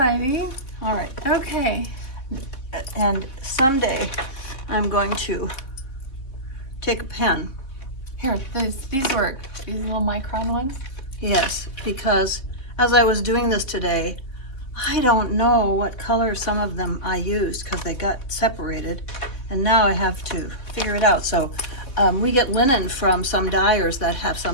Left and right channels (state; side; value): late; right; 3.7 ms